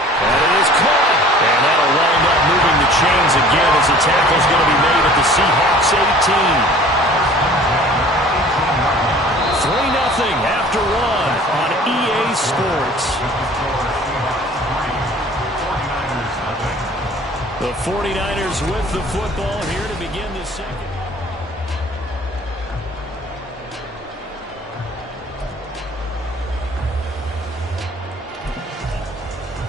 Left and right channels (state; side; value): normal; both; correlation 0.48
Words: it is caught. And that'll wind up moving the chains again as the tackle's going to be made at the Seahawks 18. 3-0 after 1 on EA Sports. The 49ers with the football here to begin the second.